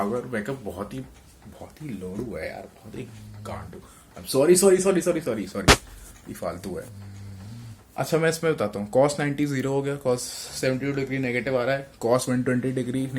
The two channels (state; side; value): identical; both; correlation 1.00